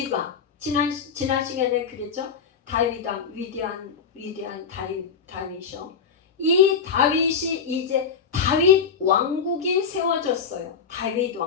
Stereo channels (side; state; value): right; quieter; 6.3 dB